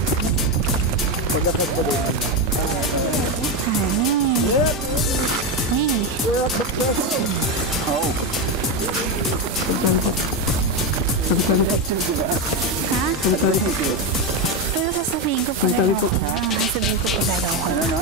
Honey. Oo. Ha? Pero sasabihin ko pag ayaw ko na. Sasabihin ko pag ayaw ko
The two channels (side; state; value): both; normal; correlation 0.11